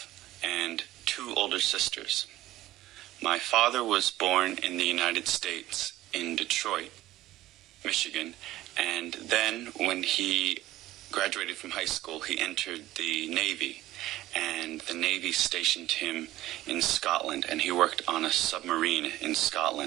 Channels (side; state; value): left; quieter; 15.6 dB